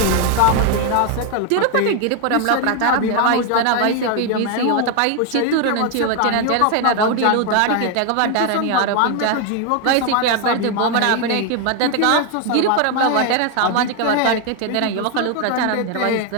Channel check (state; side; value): different; both; correlation 0.01